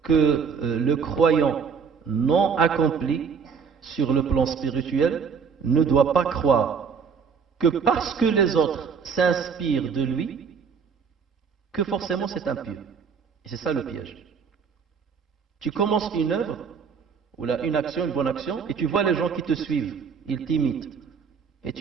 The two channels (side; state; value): left; quieter; 6.1 dB